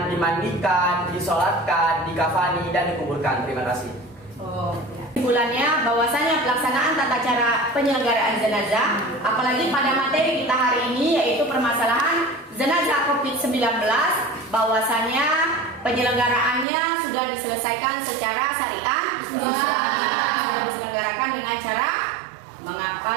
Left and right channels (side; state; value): left; drops out; at 16.7 s